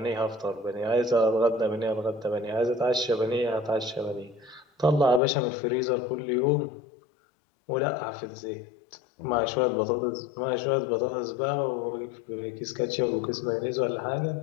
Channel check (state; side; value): drops out; right; at 5.2 s